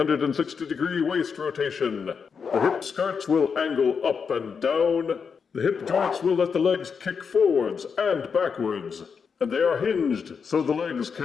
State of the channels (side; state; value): right; quieter; 6.0 dB